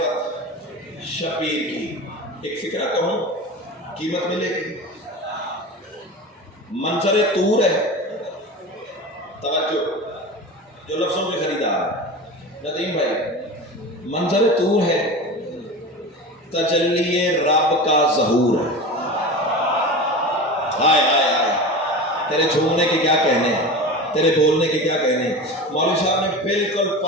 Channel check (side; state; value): both; normal; correlation 0.30